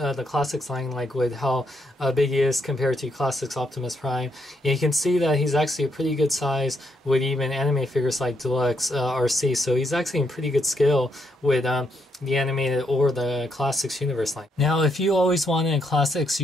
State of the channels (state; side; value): normal; both; correlation 0.76